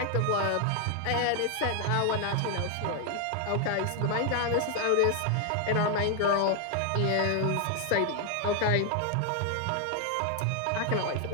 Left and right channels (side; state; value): both; different; correlation 0.00